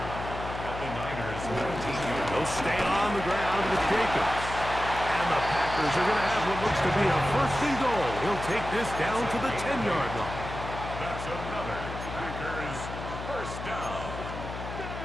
the Niners 19-yard. They'll stay on the ground with Jacobs. And the Packers are going to have what looks to be a 1st and goal. He'll take this down to the 10-yard line. That's another Packers first down.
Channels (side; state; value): left; noise; hum, 8 dB below the sound